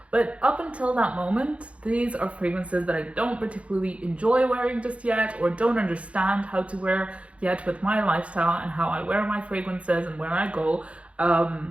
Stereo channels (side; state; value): left; late; 0.062 ms